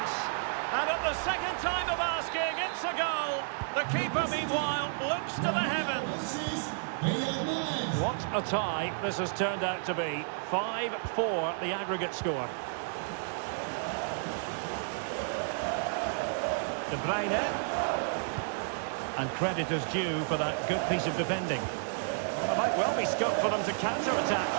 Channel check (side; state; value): left; silent; 57 dB below the other